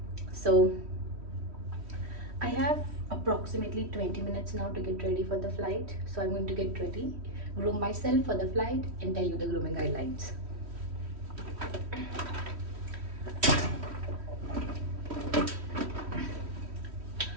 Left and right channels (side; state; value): left; late; 3.1 ms